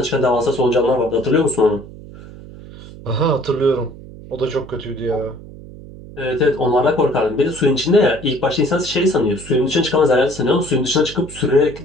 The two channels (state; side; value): noise; right; hum, 16 dB below the sound